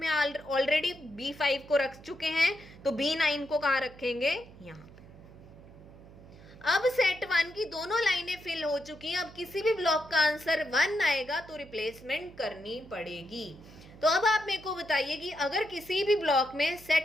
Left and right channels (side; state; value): right; noise; hum, 20 dB below the sound